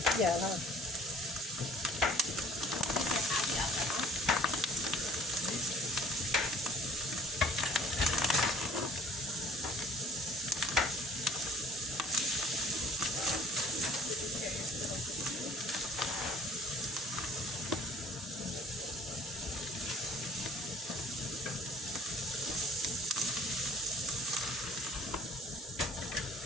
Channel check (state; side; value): normal; both; correlation 0.53